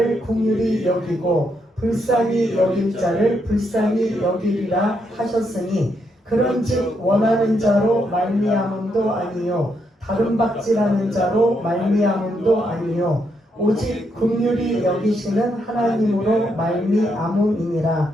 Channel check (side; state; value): both; normal; correlation 0.78